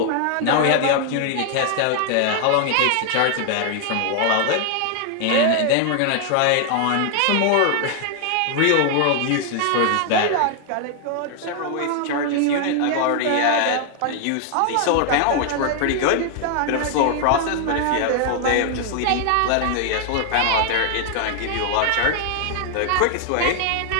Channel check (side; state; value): both; different; correlation 0.00